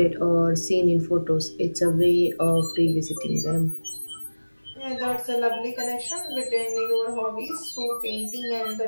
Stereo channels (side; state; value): both; inverted; correlation -1.00